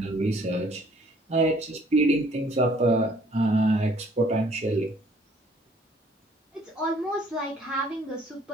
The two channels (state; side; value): normal; both; correlation 0.59